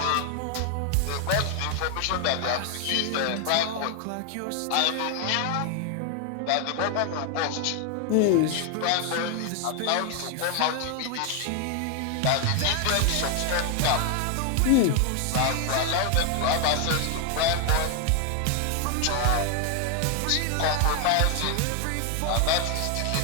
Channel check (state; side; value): different; both; correlation 0.00